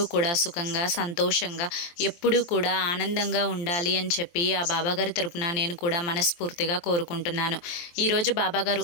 కూడా సుఖంగా సంతోషంగా ఎప్పుడూ కూడా ఆనందంగా ఉండాలి అని చెప్పి ఆ బాబాగారి తరపున నేను కూడా మనస్ఫూర్తిగా కోరుకుంటున్నాను. ఈరోజు బాబాగారు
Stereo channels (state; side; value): late; right; 23 ms